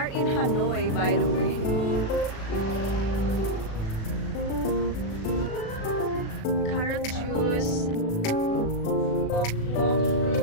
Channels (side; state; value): right; late; 36 ms